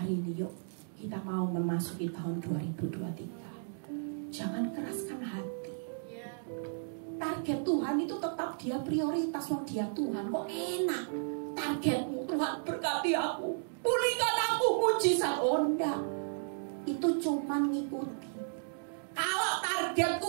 ini yuk kita mau memasuki tahun 2023. Jangan keraskan hati. Target Tuhan itu tetap dia prioritas. Wong dia Tuhan kok enak. Targetmu Tuhan berkati aku, pulihkan aku, mujizat. Oh enggak, itu cuma ngikuti. Kalau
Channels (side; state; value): left; silent; digital silence